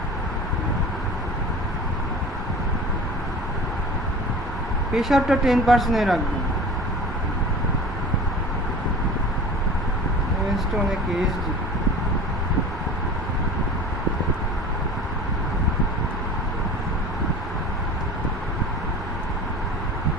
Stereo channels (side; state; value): both; normal; correlation 0.38